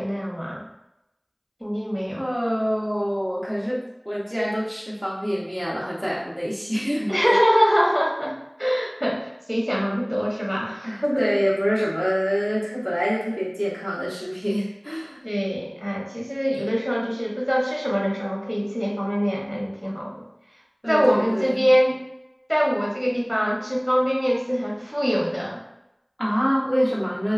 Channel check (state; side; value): identical; both; correlation 1.00